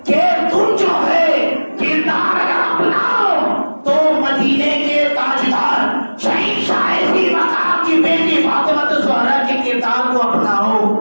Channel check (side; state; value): both; inverted; correlation -1.00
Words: کہ تم جو ہے کردار اگر اپناؤ تو مدینے کے تاجدار شہنشاہ ذی مقام کی بیٹی فاطمہ الزہرا کے کردار کو اپناؤ.